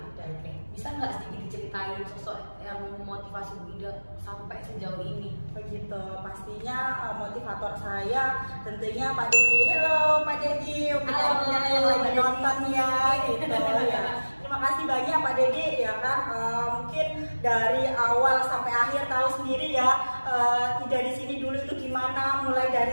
Oke, bisa nggak sedikit diceritain sosok yang memotivasi Bu Ida sampai sejauh ini? Begitu, pastinya motivator saya tentunya Pak Dedi. Halo Pak Dedi, yang lagi nonton ya gitu ya. Terima kasih banyak Pak Dedi ya kan, mungkin dari awal sampai akhir tahu sendiri ya, Ida di sini dulu itu gimana. Mulai dari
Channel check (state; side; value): inverted; both; correlation -1.00